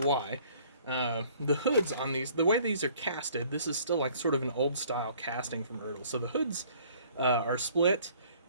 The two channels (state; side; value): inverted; both; correlation -0.56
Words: The hoods on these, the way these are casted, this is still like sort of an old style casting from Ertl. So the hoods are split,